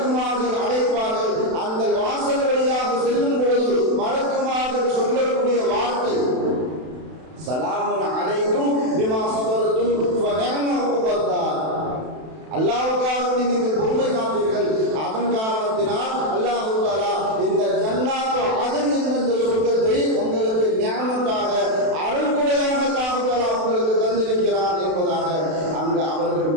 அழைப்பார்கள். அந்த வாசல் வழியாக செல்லும் பொழுது மலக்குமார்கள் சொல்லக்கூடிய வார்த்தை சலாமுன் அலைக்கும் பிமா ஸபர்தும் ஃபநிஅம உக்பத்தார். அல்லாஹ்வுக்காக நீங்கள் பொறுமை காத்தீர்கள், அதன் காரணத்தினால் அல்லாஹ் தஆலா இந்த ஜன்னாத் அதன் இந்த சொர்க்கத்தை உங்களுக்கு நியாமத்தாக அருள்கொடையாக அல்லாஹ் தஆலா உங்களுக்கு தந்திருக்கிறார் என்பதாக அங்கு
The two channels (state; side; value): late; left; 32 ms